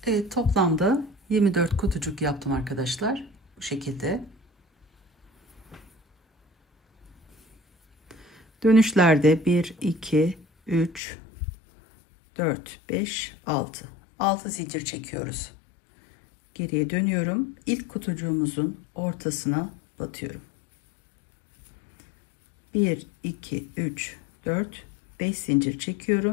Evet, toplamda 24 kutucuk yaptım arkadaşlar. Bu şekilde. Dönüşlerde 1, 2, 3, 4, 5, 6. 6 zincir çekiyoruz. Geriye dönüyorum. İlk kutucuğumuzun ortasına batıyorum. 1, 2, 3, 4, 5 zincir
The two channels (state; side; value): drops out; right; at 11.0 s